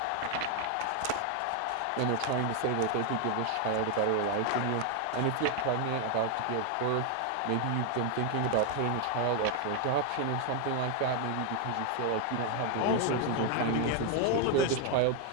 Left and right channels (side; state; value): both; different; correlation 0.00